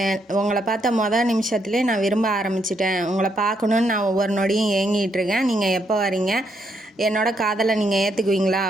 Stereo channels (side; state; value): both; normal; correlation 0.76